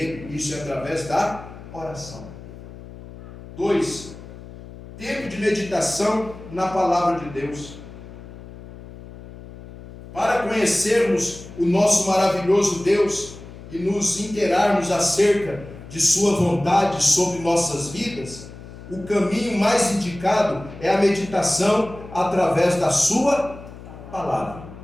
isso é através da oração. 2. Tempo de meditação na palavra de Deus. Para conhecermos o nosso maravilhoso Deus e nos inteirarmos acerca de sua vontade sobre nossas vidas, o caminho mais indicado é a meditação através da sua palavra.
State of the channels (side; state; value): left; noise; hum, 16 dB below the sound